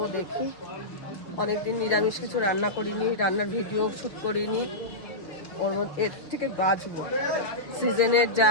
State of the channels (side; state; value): right; late; 5.9 ms